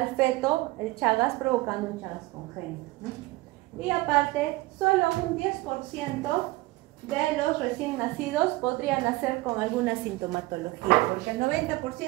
feto el Chagas, provocando un Chagas congénito, ¿no? Y aparte, solo un 10% de los recién nacidos podrían nacer con alguna sintomatología, porque el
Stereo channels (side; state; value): left; quieter; 20.4 dB